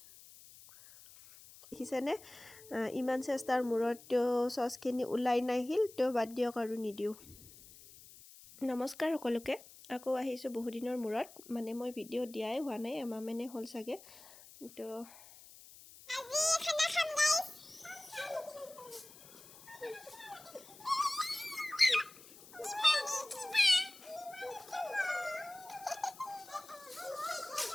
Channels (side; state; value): left; noise; hiss, 20 dB below the sound